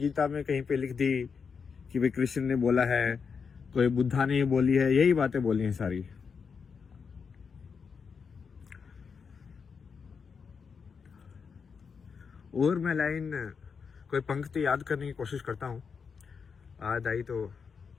में कहीं पे लिख दी कि भाई कृष्ण ने बोला है, कोई बुद्धा ने बोली है, यही बातें बोली हैं सारी। और मैं लाइन कोई पंक्ति याद करने की कोशिश करता हूँ, याद आई तो।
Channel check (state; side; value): quieter; right; 5.9 dB